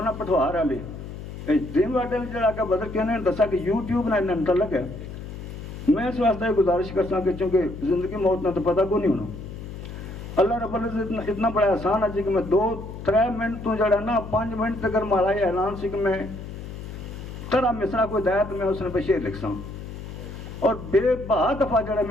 پٹھوار والے اے ڈریم ورلڈ والے جڑا کہ بدر کہنے دسا کہ یوٹیوب نال متعلق ہے میں اس واسطے گزارش کرساں کہ چونکہ زندگی موت نہ تو پتہ کو نہیں ہونا اللہ رب العزت اتنا بڑا آسان ہے کہ میں 2-3 منٹ تو جڑا نا 5 منٹ تک مارا یہ اعلان سی کہ میں ترا مصرا کوئی دیا تو میں اس نے پہ شعر لکھ ساں اور بے بہا دفعہ جڑا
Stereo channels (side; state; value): left; noise; hum, 10 dB below the sound